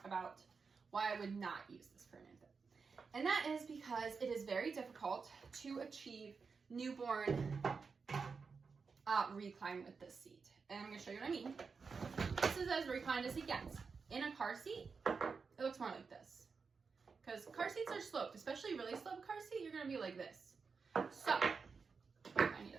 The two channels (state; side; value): quieter; left; 5.1 dB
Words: about why I would not use this for an infant. And that is because it is very difficult to achieve newborn recline with this seat. And I'm going to show you what I mean. This is as reclined as it gets. In a car seat, it looks more like this. Because car seats are sloped, especially really sloped car seat, you're going to be like this. So, I need to